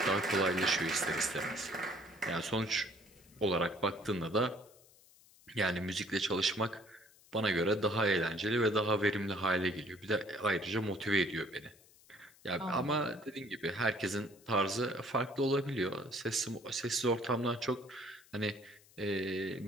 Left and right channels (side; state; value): left; noise; hiss, 26 dB below the sound